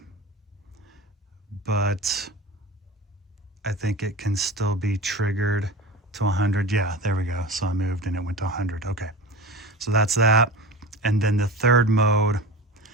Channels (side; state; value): both; normal; correlation 0.31